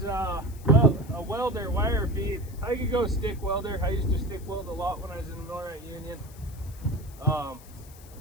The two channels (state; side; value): noise; left; hiss, 22 dB below the sound